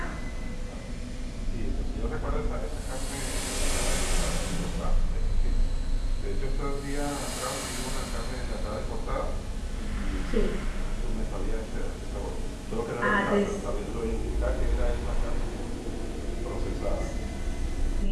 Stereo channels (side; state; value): both; identical; correlation 1.00